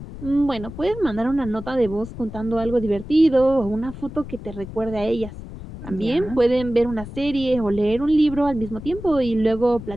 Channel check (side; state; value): left; noise; rumble, 12 dB below the sound